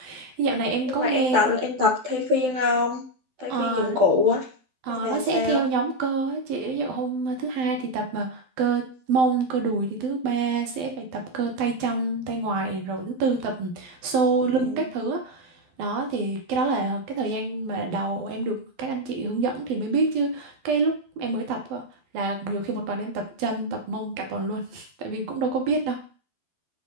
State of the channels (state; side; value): late; left; 12 ms